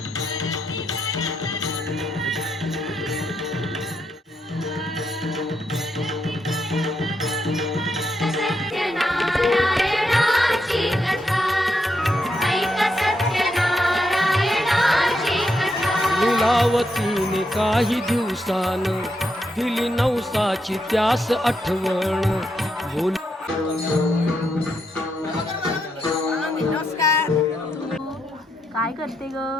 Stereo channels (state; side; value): normal; both; correlation 0.81